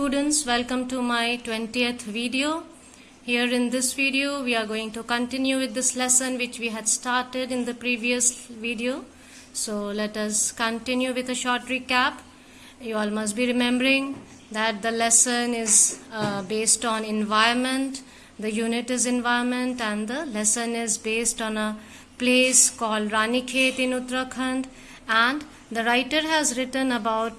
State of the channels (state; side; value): identical; both; correlation 1.00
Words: welcome to my 20th video. Here in this video we are going to continue with this lesson which we had started in the previous video. So let us continue with a short recap. You all must be remembering that the lesson is based on environment. The unit is environment and the lesson is based on a place called Ranikhet in Uttarakhand, and the writer has written